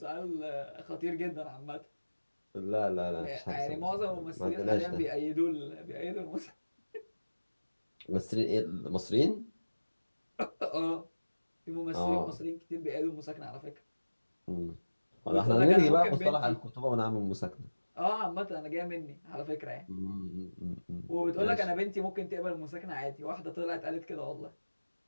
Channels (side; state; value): both; inverted; correlation -1.00